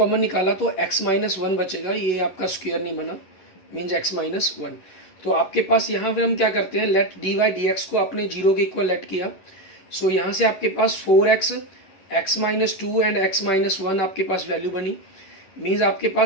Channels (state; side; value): late; right; 11 ms